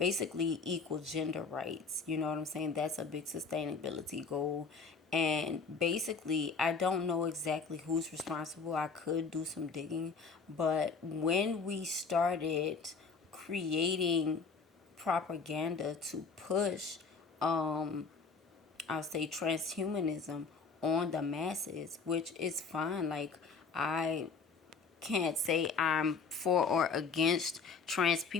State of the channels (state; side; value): quieter; right; 5.1 dB